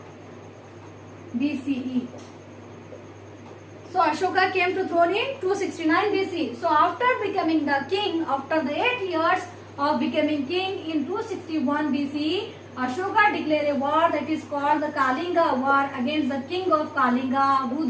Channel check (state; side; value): identical; both; correlation 1.00